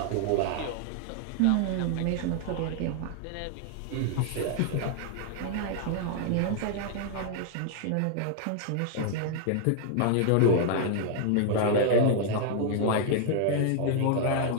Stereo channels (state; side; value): different; both; correlation 0.00